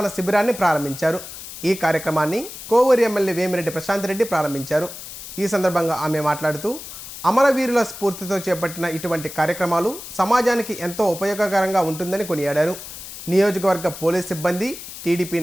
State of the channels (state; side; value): noise; left; hiss, 12 dB below the sound